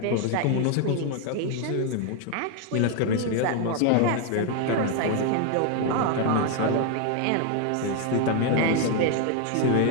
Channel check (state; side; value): different; both; correlation 0.01